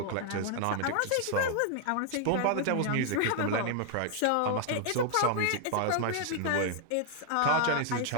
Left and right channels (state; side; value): different; both; correlation 0.00